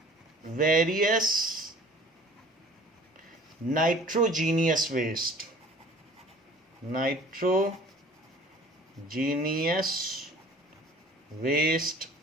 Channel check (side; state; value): both; normal; correlation 0.48